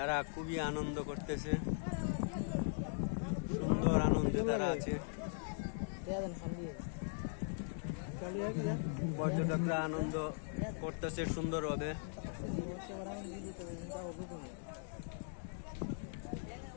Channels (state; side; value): silent; right; 51 dB below the other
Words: খুবই আনন্দ করতেছে, সুন্দর আনন্দে তারা আছে। পর্যটকরা আনন্দ করতেছে সুন্দরভাবে।